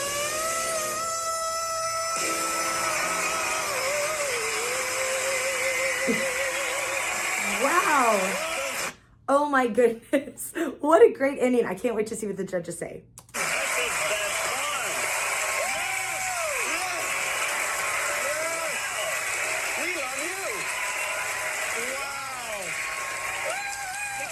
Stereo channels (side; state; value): both; identical; correlation 1.00